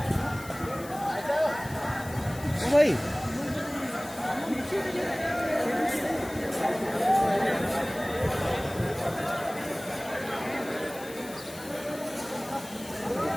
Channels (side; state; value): left; noise; hiss, 16 dB below the sound